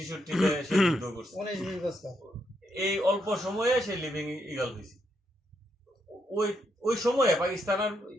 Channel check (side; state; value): both; normal; correlation 0.79